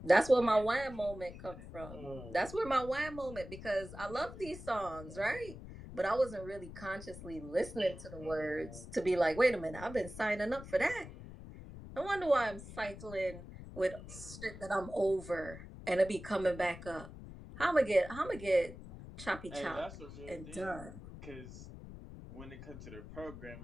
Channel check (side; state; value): left; noise; rumble, 13 dB below the sound